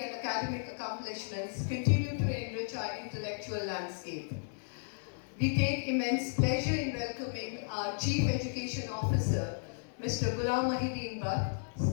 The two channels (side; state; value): right; silent; digital silence